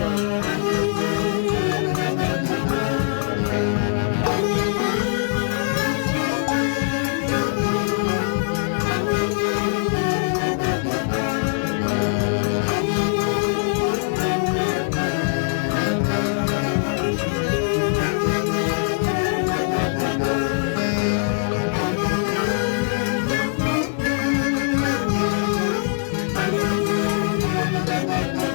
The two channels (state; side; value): silent; right; 64 dB below the other